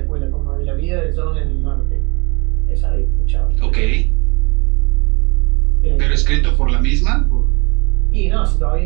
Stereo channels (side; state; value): left; quieter; 28.9 dB